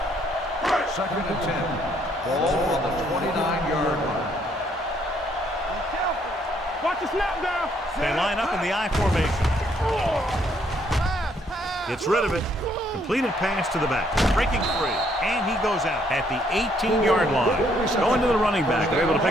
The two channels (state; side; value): normal; both; correlation 0.69